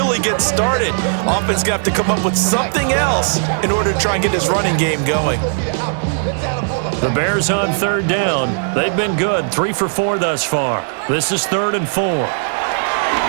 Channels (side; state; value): left; silent; digital silence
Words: get started. Offense got to come up with something else in order to try and get this running game going. The Bears on 3rd down. They've been good, 3 for 4 thus far. This is 3rd and 4. To